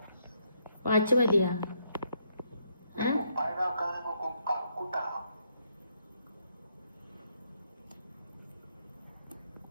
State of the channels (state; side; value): inverted; both; correlation -0.74